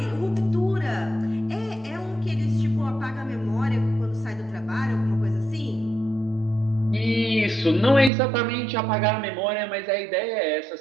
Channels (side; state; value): left; drops out; at 8.1 s